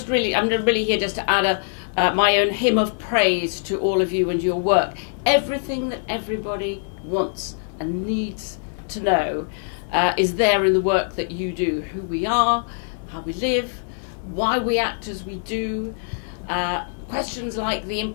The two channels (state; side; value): silent; right; digital silence